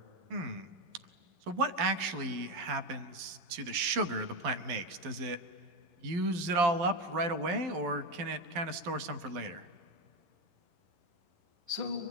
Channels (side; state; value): left; late; 12 ms